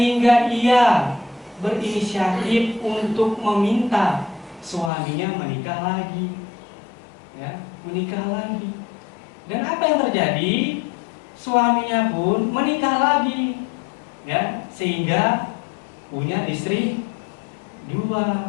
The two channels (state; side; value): drops out; right; at 4.9 s